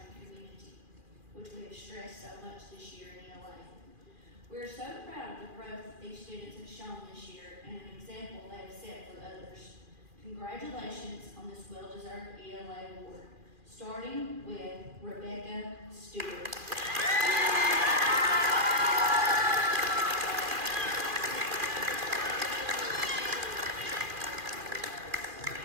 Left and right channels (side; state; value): left; late; 2.4 ms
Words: community, which we have stressed so much this year in ELA. We are so proud of the growth that these students have shown this year and an example they have set for others. Congratulations on this well-deserved ELA award, starting with Rebecca Stewart.